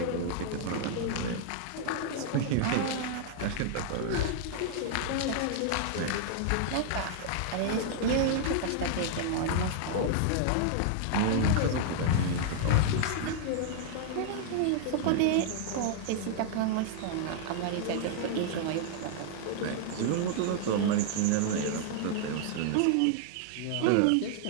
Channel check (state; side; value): different; both; correlation -0.01